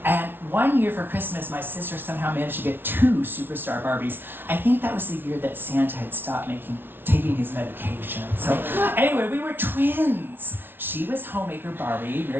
And one year for Christmas, my sister somehow managed to get 2 superstar Barbies. I think that was the year that Santa had stopped taking his medication. So, anyway, we were twins. She was homemaker Barbie,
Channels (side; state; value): left; late; 0.10 ms